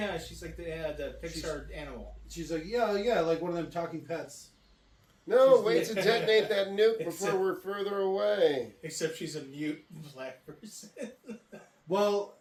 she's like the Pixar animal. She's like, yeah, like one of them talking pets. No, She's wait to detonate that nuke It's before we're further away. Except she's a mute black person. Well,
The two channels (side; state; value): both; identical; correlation 1.00